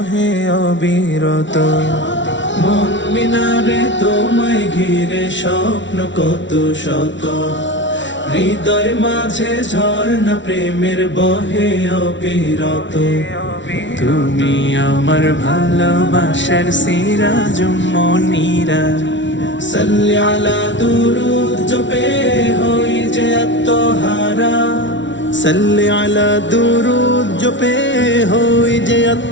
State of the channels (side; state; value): right; late; 0.54 ms